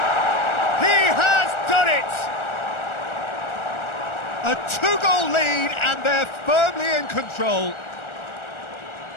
He has done it! A two-goal lead, and they're firmly in control.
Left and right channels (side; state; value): right; late; 1.4 ms